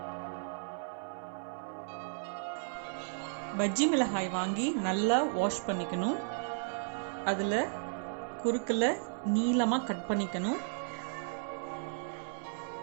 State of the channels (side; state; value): left; silent; 55 dB below the other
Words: பஜ்ஜி மிளகாய் வாங்கி நல்லா வாஷ் பண்ணிக்கணும். அதில் குறுக்கில் நீளமாக கட் பண்ணிக்கணும்.